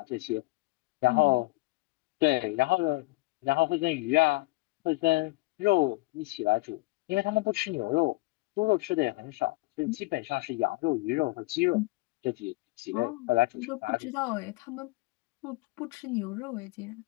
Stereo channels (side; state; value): right; quieter; 22.8 dB